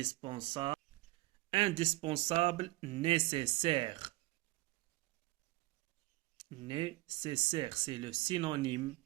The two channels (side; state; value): left; quieter; 20.1 dB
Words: indispensable, nécessaire. Nécessaire, c'est le synonyme